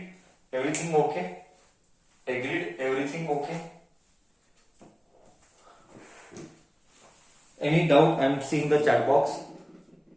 Everything okay? Any doubt? I'm seeing the chat box.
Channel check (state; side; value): identical; both; correlation 1.00